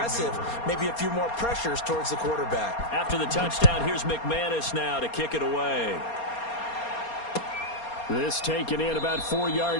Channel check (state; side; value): late; right; 4.3 ms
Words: maybe a few more pressures towards the quarterback. After the touchdown, here's McManus now to kick it away. This taken in about 4